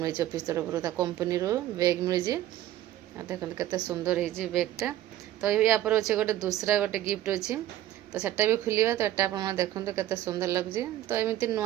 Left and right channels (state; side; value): quieter; left; 13.5 dB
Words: ऑफिस तरफ कंपनी बैग मिली देखते केते सुंदर है बैगटा तो या पर अच्छे गोटे दूसरा गोटे गिफ्ट अच्छी तो सेटा भी खोलिया तो एटा आप देखते केते सुंदर लगे तो एमती